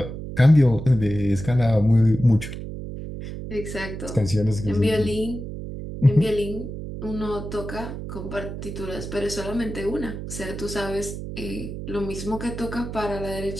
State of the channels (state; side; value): noise; right; hum, 8 dB below the sound